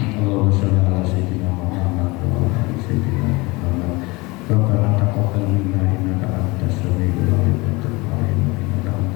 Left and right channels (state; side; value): quieter; right; 24.1 dB